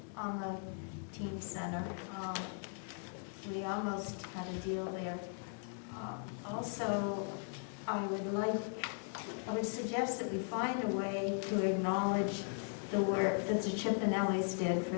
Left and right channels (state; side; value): silent; right; 52 dB below the other